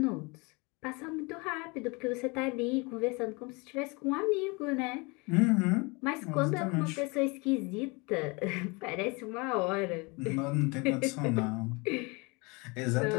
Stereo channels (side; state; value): right; quieter; 28.0 dB